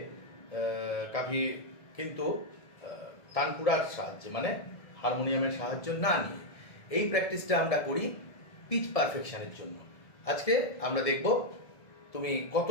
কাফি কিন্তু তানপুরার সাহায্যে, মানে হারমোনিয়ামের সাহায্য না নিয়ে। এই প্র্যাকটিসটা আমরা করি পিচ পারফেকশনের জন্য। আজকে আমরা দেখব তুমি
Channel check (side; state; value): right; late; 1.7 ms